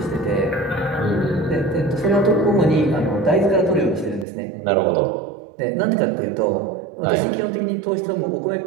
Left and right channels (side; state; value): left; drops out; at 4.2 s